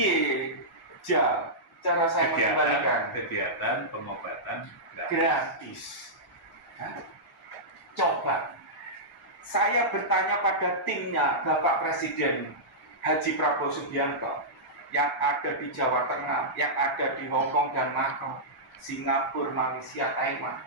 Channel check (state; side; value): normal; both; correlation -0.13